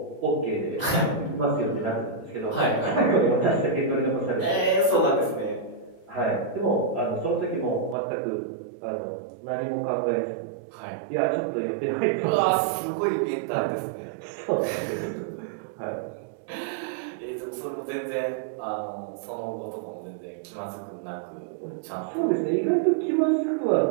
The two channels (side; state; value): left; drops out; at 8.0 s